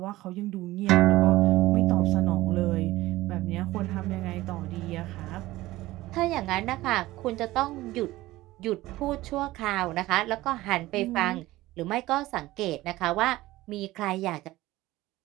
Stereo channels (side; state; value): left; quieter; 17.6 dB